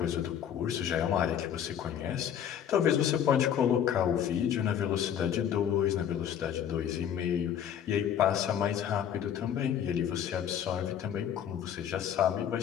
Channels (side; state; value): right; quieter; 9.3 dB